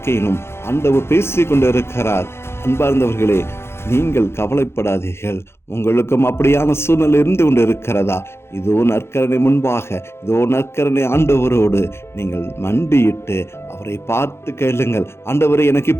ஆண்டவர் பேசிக் கொண்டிருக்கிறார். அன்பார்ந்தவர்களே, நீங்கள் கவலைப்படாதீர்கள். உங்களுக்கும் அப்படியான சூழ்நிலை இருந்து கொண்டு இருக்கிறதா? இதோ நற்கருணை முன்பாக, இதோ நற்கருணை ஆண்டவரோடு நீங்கள் மண்டியிட்டு அவரை பார்த்து கேளுங்கள். ஆண்டவரே, எனக்கு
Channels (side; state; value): right; late; 0.12 ms